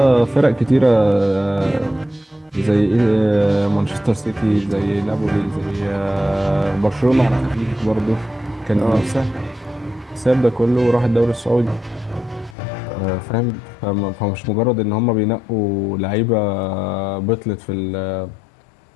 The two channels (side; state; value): right; drops out; at 12.6 s